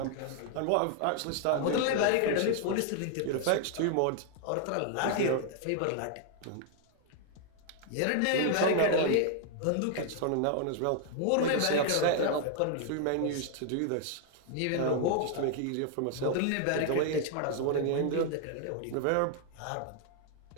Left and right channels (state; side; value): different; both; correlation 0.00